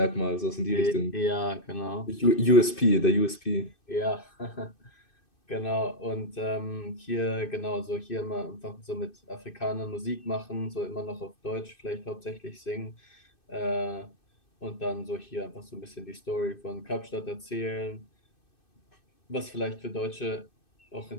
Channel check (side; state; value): right; late; 2.6 ms